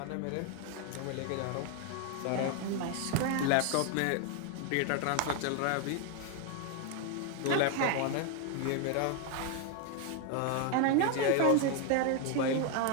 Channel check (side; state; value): both; different; correlation 0.01